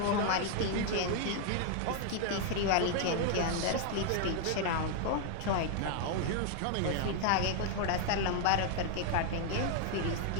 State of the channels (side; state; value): both; different; correlation 0.00